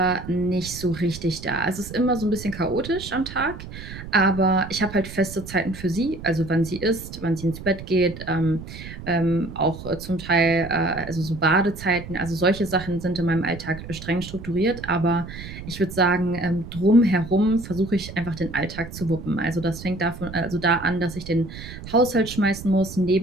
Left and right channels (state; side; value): noise; right; rumble, 12 dB below the sound